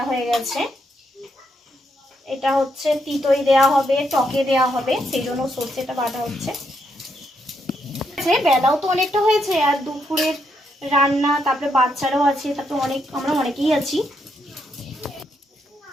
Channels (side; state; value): both; normal; correlation 0.78